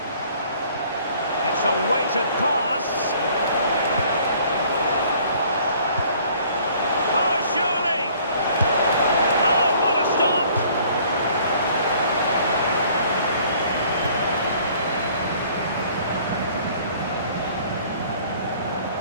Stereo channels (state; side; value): inverted; both; correlation -0.56